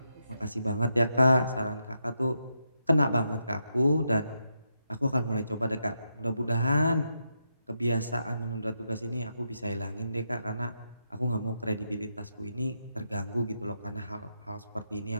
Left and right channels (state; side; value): inverted; both; correlation -0.83